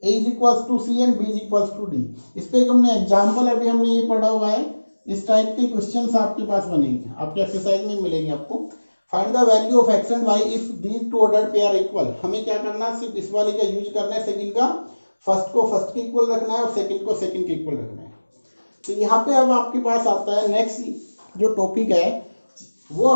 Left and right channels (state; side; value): inverted; both; correlation -1.00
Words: A = C and B = D। इस पे हमने एग्जांपल अभी हमने ये पढ़ा हुआ है। इस टाइप के क्वेश्चंस आपके पास बनेंगे, आपके एक्सरसाइज में मिलेंगे आपको। Find the value of x and y if these two ordered pair equal. हमें क्या करना है, सिर्फ इस वाले का यूज करना है, सेकंड का फर्स्ट को फर्स्ट के इक्वल रखना है और सेकंड को सेकंड के इक्वल रखना है। तो यहाँ पे अब आपके पास आता है नेक्स्ट जो टॉपिक है वो